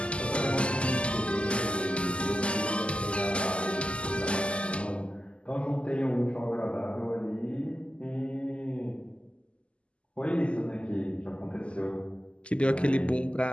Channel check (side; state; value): right; late; 0.054 ms